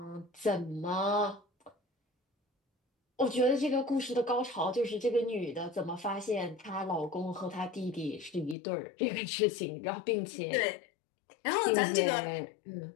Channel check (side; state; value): right; drops out; at 8.6 s